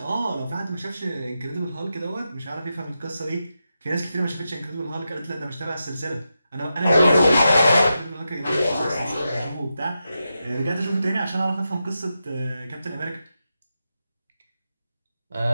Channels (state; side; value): inverted; both; correlation -0.88